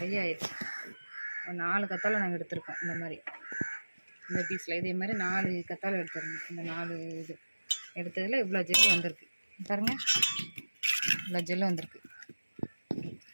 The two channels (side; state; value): both; inverted; correlation -1.00